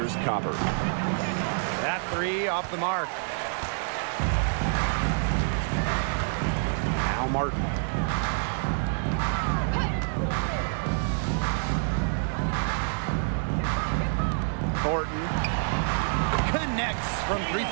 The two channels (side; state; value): left; silent; digital silence